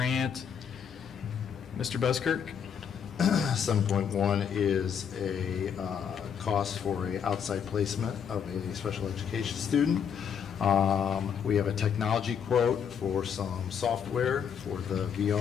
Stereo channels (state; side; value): quieter; right; 7.7 dB